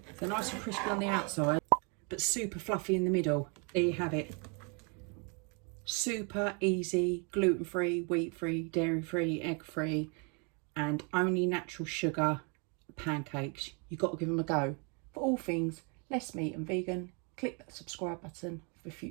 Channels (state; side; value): quieter; left; 34.9 dB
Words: They're nice and crispy on the outside, but super fluffy in the middle. There you have it. Super easy, gluten-free, wheat-free, dairy-free, egg-free, and only natural sugar pancakes. You've got to give them a go. For all things less meat and vegan, click that subscribe button for